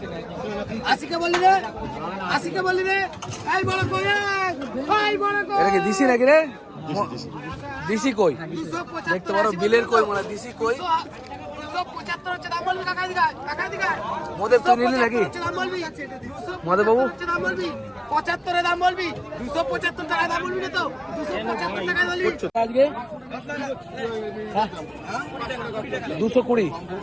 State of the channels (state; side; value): identical; both; correlation 1.00